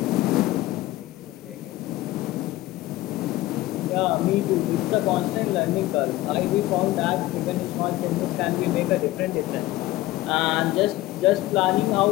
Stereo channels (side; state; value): right; quieter; 17.0 dB